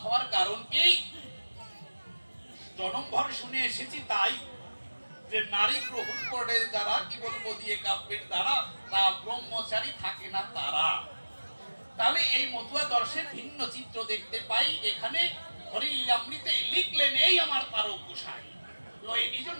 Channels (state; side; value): inverted; both; correlation -1.00